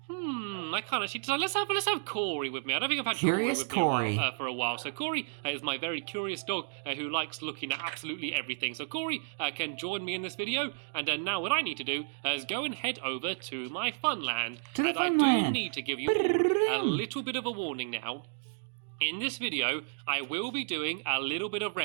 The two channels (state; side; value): silent; left; digital silence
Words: I can't actually... So let's have Corey with me. I don't think I've had Curious Corey with me Corey. for a while. So Corey is my very curious dog who likes looking at absolutely everything. So Corey can join me in this video. And now what I need to do is go and head over to my Funland. To the And I Funland. do need to give you all a little bit of a warning now. In this video, I will be doing a little bit of